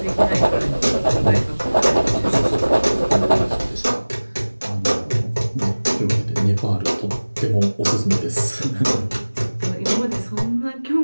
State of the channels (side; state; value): both; inverted; correlation -1.00